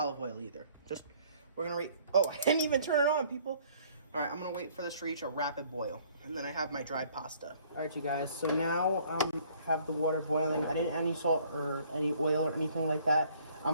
oil either. Just, we're going to oh, I didn't even turn it on, people. All right, I'm going to wait for this to reach a rapid boil. And then I have my dried pasta. All right, you guys. So now have the water boiling. I didn't add any salt or any oil or anything like that.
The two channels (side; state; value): both; inverted; correlation -0.59